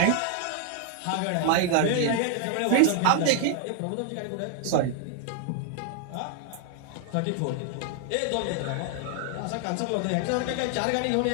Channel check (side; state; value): both; different; correlation 0.00